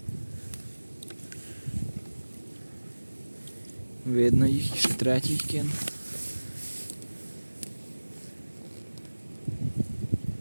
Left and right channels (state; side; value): inverted; both; correlation -1.00